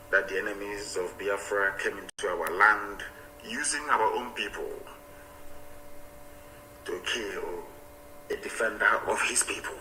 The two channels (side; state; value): both; identical; correlation 1.00